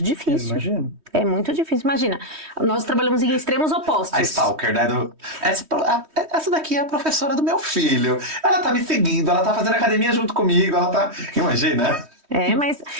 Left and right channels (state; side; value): late; left; 3.1 ms